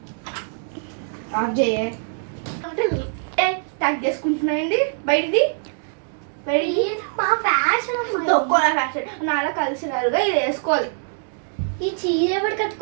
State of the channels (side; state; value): left; silent; digital silence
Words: స్టార్ట్ చేసుకుంటున్నాయండి బయటిది మా ఫ్యాషన్ తొక్కోల ఫ్యాషన్ నాలా కలిసినారుగా ఇది వేసుకోవాలి. ఈ చీర ఎవడు